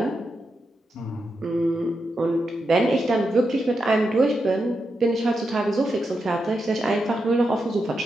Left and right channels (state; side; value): normal; both; correlation 0.86